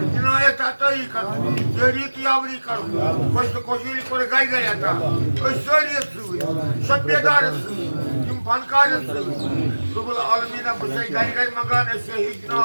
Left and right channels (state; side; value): inverted; both; correlation -1.00